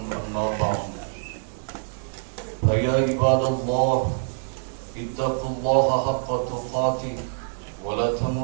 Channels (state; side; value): silent; left; digital silence